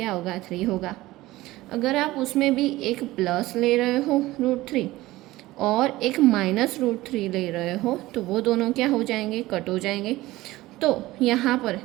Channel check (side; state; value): left; quieter; 17.9 dB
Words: होगा, 3 होगा। अगर आप उसमें भी एक प्लस ले रहे हो √3 और एक -√3 ले रहे हो तो वो दोनों क्या हो जाएंगे, कट हो जाएंगे। तो यहाँ पर